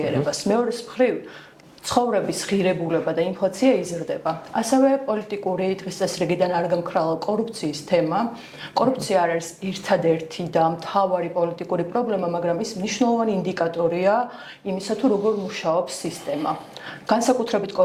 მეორეს მხრივ ცხოვრების ღირებულება და ინფლაცია იზრდება. ასევე პოლიტიკური დღის წესრიგიდან არ გამქრალა კორუფციის თემა. კორუფცია არ არის ერთადერთი და მთავარი პოლიტიკური პრობლემა, მაგრამ ის მნიშვნელოვანი ინდიკატორია იმისა, თუ როგორ მუშაობს სისტემა. განსაკუთრებით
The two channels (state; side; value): identical; both; correlation 1.00